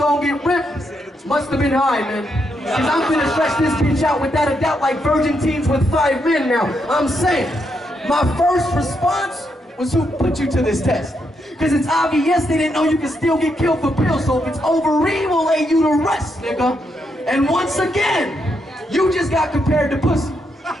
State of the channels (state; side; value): normal; both; correlation 0.80